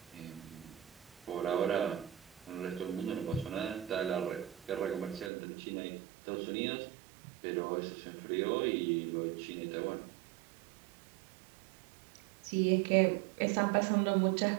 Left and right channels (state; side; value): drops out; left; at 5.3 s